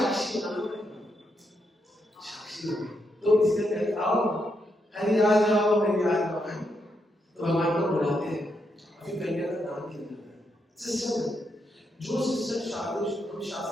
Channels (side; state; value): both; normal; correlation 0.81